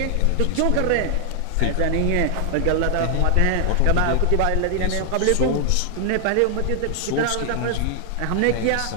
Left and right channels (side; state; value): both; different; correlation 0.00